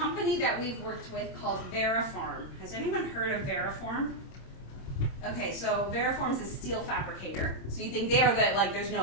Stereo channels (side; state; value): right; late; 26 ms